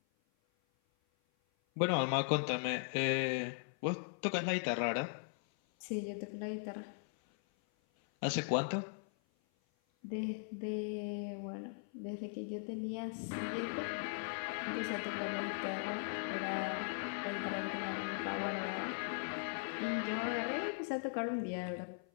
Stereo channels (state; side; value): silent; right; 52 dB below the other